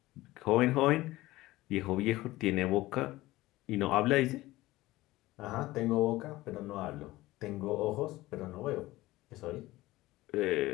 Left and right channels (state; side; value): quieter; right; 18.0 dB